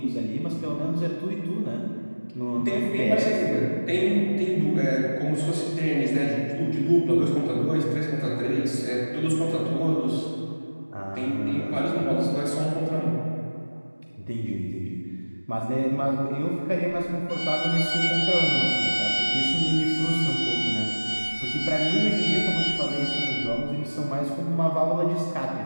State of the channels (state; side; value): inverted; both; correlation -1.00